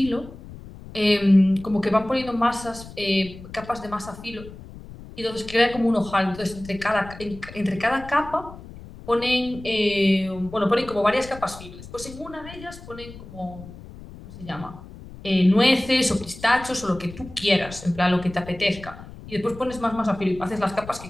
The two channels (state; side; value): noise; left; rumble, 16 dB below the sound